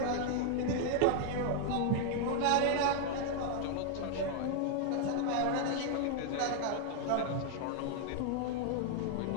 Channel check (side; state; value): both; different; correlation 0.00